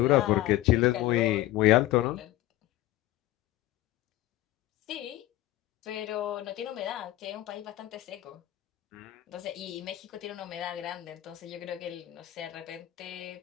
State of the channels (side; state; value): right; quieter; 15.7 dB